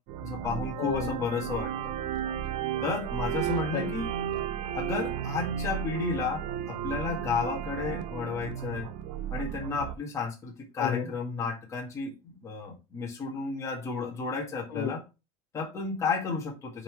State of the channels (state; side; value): normal; both; correlation 0.21